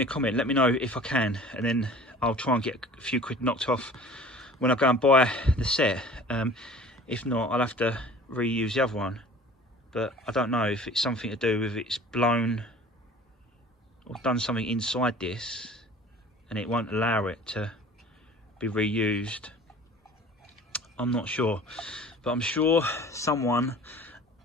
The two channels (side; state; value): both; normal; correlation 0.45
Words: a comment. Let me know if I can, and then I'll try and get a few quid knocked off when I go and buy the set. If not, I'll have to reuse the other one. But I don't know if it's something to do with it's blown or done something inside this, and it won't allow it to be reused. I'm not sure, but I'm sure someone